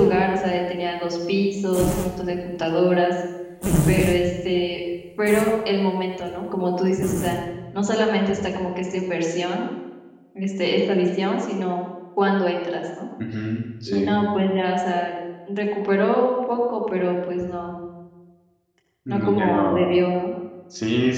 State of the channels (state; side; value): identical; both; correlation 1.00